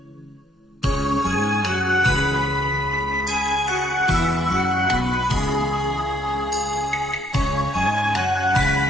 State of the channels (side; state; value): both; normal; correlation 0.68